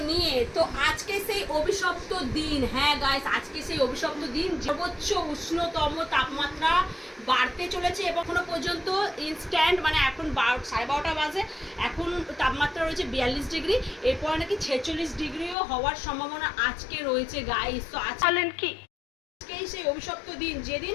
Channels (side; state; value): right; drops out; at 15.6 s